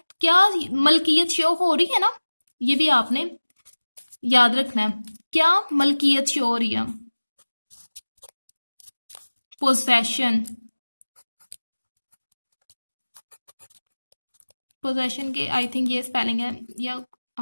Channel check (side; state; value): both; inverted; correlation -1.00